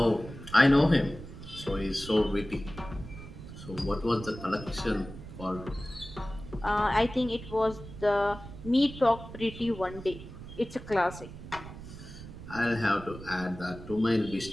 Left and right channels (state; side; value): noise; right; rumble, 13 dB below the sound